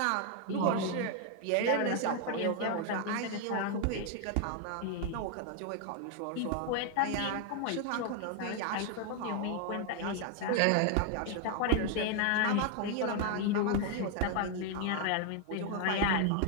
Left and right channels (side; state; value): both; different; correlation 0.00